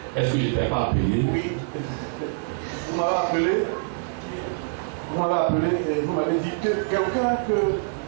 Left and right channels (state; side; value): silent; left; digital silence